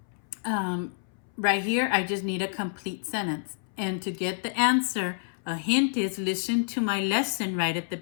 right here, I just need a complete sentence. And to get the answer, a hint is listen to my lesson right at the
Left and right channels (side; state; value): right; silent; 59 dB below the other